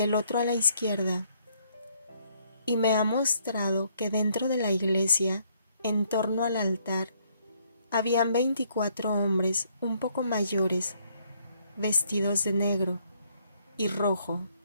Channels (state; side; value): inverted; both; correlation -0.68